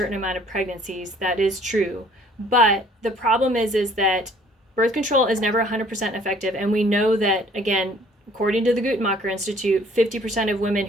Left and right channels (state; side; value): normal; both; correlation 0.57